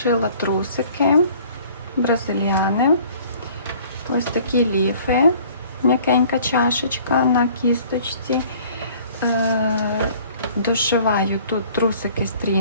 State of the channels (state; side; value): inverted; both; correlation -0.53